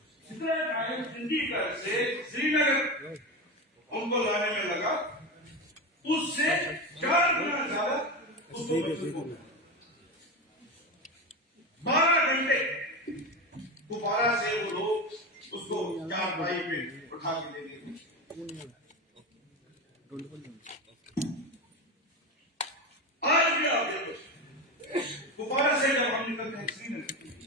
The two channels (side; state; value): both; normal; correlation 0.20